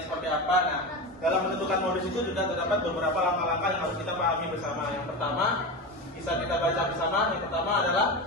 seperti apa. Nah, dalam menentukan modus itu juga terdapat beberapa langkah-langkah yang harus kita pahami bersama. Yang pertama, bisa kita baca bersama. Yang pertama adalah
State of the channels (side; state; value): both; normal; correlation 0.22